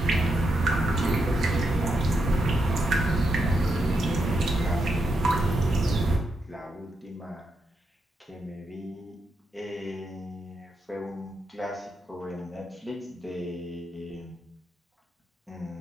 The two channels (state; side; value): normal; both; correlation 0.83